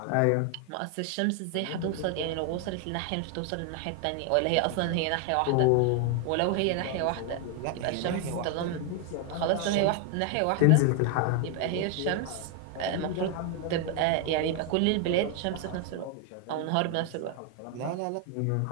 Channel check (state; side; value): different; both; correlation 0.01